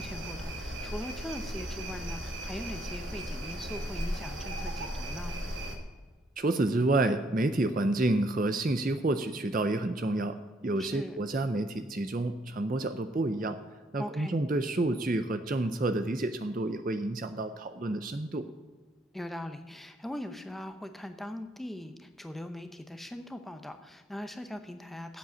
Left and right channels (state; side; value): normal; both; correlation 0.70